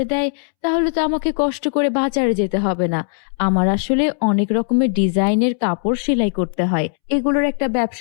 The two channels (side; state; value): right; silent; 67 dB below the other